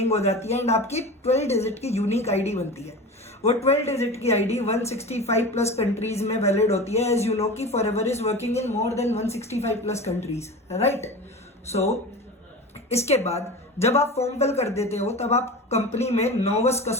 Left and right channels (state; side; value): normal; both; correlation 0.31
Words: हो जाती है एंड आपकी 12 डिजिट की यूनिक आईडी बनती है। वो 12 डिजिट की आईडी 165 प्लस कंट्रीज में वैलिड होती है। एज यू नो कि Forever is working in more than 165 plus countries, right. So इसके बाद जब आप फॉर्म फिल कर देते हो तब आप कंपनी में नोवस